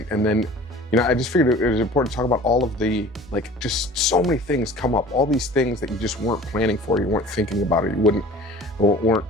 And then, I just figured it was important to talk about all of the, just so many things come up, all these things that you just weren't planning for, you weren't thinking about it, you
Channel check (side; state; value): both; normal; correlation 0.45